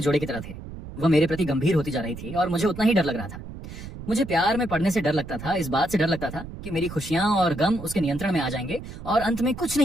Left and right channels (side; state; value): right; noise; rumble, 12 dB below the sound